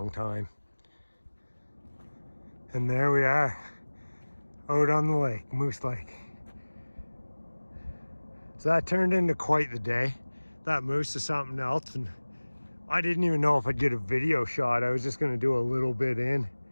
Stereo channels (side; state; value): both; inverted; correlation -1.00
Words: time. And there we are, out on the lake, Moose Lake. So that turned into quite the day. That moose is something else, and I didn't even know if I'd get a video shot. I was just gonna do a little bit in,